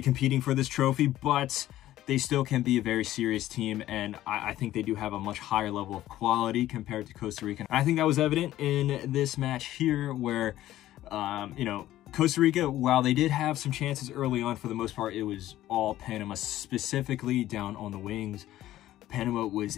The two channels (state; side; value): quieter; right; 14.1 dB